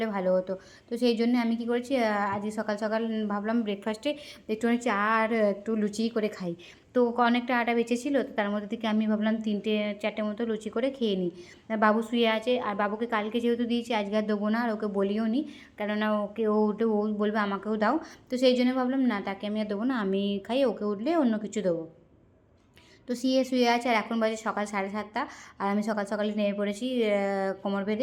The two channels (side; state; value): both; identical; correlation 1.00